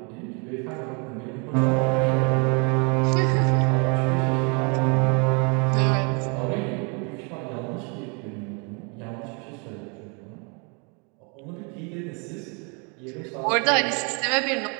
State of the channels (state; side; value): quieter; left; 34.3 dB